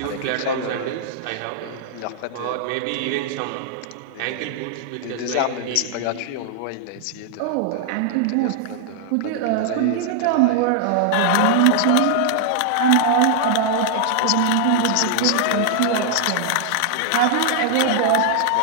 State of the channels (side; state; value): both; different; correlation 0.00